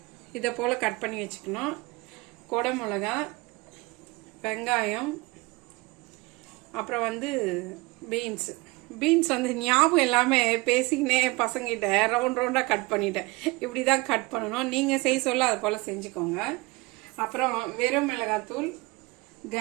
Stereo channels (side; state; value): left; quieter; 24.0 dB